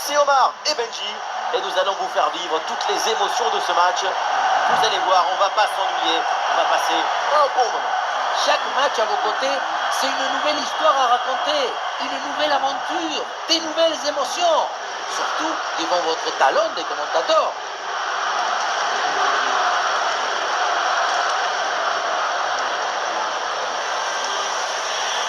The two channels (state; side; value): identical; both; correlation 1.00